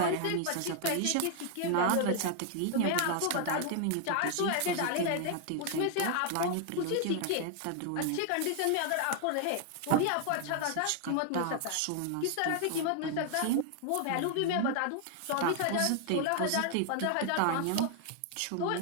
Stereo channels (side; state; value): both; different; correlation 0.00